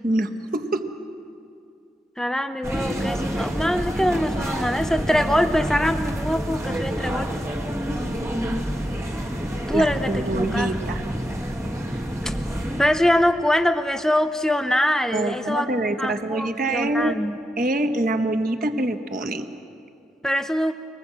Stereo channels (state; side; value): normal; both; correlation 0.86